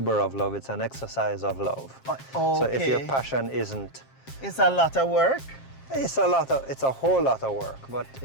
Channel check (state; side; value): late; right; 7.5 ms